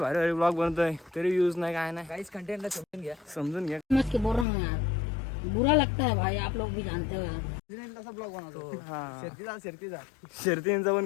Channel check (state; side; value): drops out; right; at 4.5 s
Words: भारी ब्लॉग बनतोय, तरी व्ह्यूज नाही काय नाही. काहीच कंटेंटला समजून घ्या. समजून घ्या. समझ के बोल रहा हूँ यार, बुरा लगता है भाई, आप लोग भी जानते हो. हा शर्तींचा पण